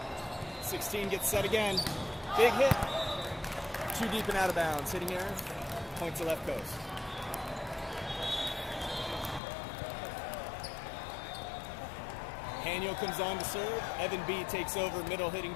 16 gets set again. Big hit. Too deep and out of bounds. Hitting error. Point to left coast. Haniel comes on to serve. Evan B takes over middle hitting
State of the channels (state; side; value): drops out; right; at 9.4 s